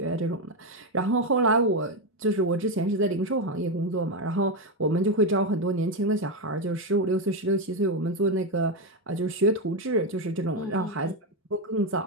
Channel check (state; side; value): normal; both; correlation 0.08